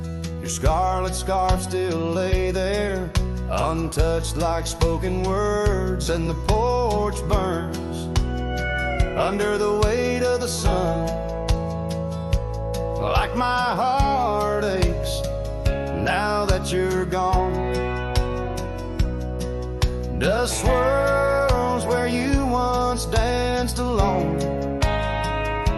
Your scarlet scarf still lay there, untouched like spoken words. And the porch burns under the weight of the sun, like my heart aches now that you're gone. Dust swirls where you once danced alone,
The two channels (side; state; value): both; identical; correlation 1.00